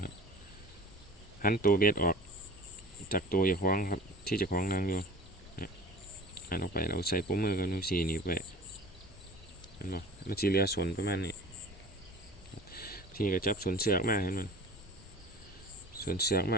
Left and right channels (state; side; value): normal; both; correlation 0.40